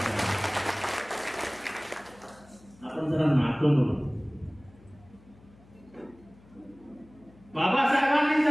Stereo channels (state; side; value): noise; left; hum, 26 dB below the sound